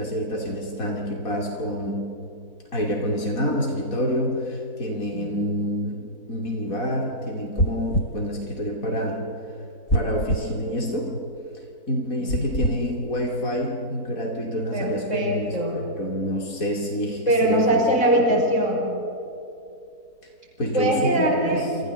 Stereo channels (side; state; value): right; late; 4.1 ms